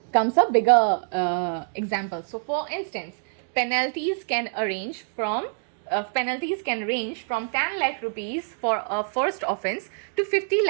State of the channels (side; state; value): left; silent; 61 dB below the other